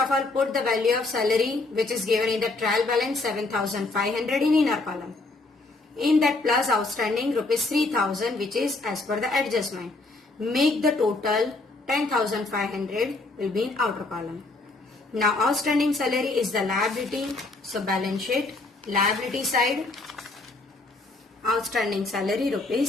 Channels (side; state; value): right; quieter; 3.2 dB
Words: all put the value of salary which is given in the trial balance 7,500 in inner column. In that plus outstanding rupees 3,000 which is as per the adjustment. Make the total 10,500 will be in outer column. Now outstanding salary is the liability, so balance sheet liability side outstanding salary